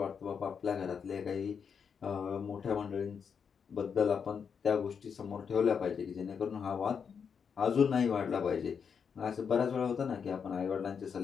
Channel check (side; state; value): right; quieter; 6.6 dB